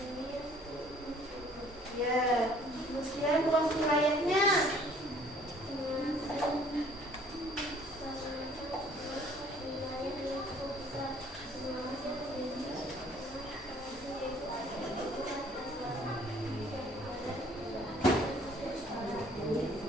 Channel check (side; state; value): both; normal; correlation 0.57